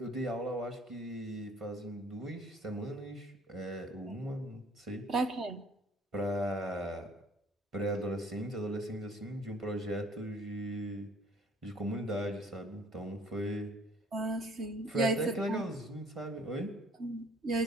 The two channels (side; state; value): both; normal; correlation 0.56